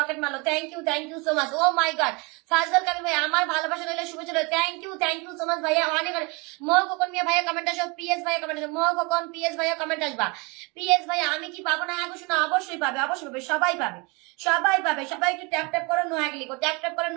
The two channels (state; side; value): quieter; left; 28.7 dB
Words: মারলো। Thank you so much. Oh my God, Fazal Kabir ভাই আমার ভালোবাসা রইল, শুভেচ্ছা রইল। থ্যাংক ইউ সো মাচ ভাইয়া, অনেক অনেক। মোহ কোকন মিয়া ভাইয়া কমেন্ট আসো, পিএস ভাইয়া কমেন্ট আসো, মোহ কোকন পিএস ভাইয়া কমেন্ট আসবা। পিএস ভাইয়া আমি কি পাবো না? হ্যাঁ শোনা, অবশ্যই পাবে, অবশ্যই পাবে, সবাই পাবে, সবাই পাবে। সবাই একটু ট্যাপ ট্যাপ করে নোয়াগলি কো, ট্যাপ ট্যাপ করে